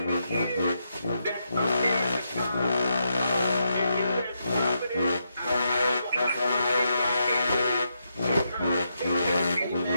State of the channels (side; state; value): both; inverted; correlation -0.82